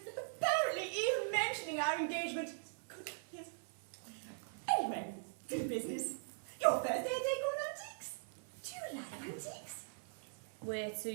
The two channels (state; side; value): silent; left; 50 dB below the other